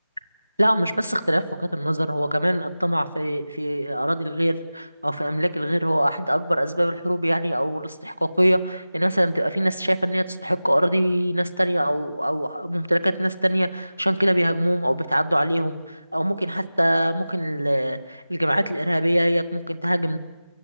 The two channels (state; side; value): inverted; both; correlation -0.97